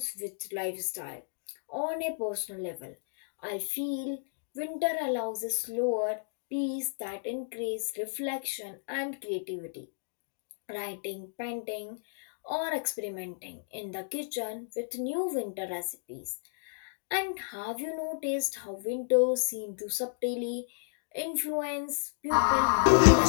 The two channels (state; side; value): silent; right; digital silence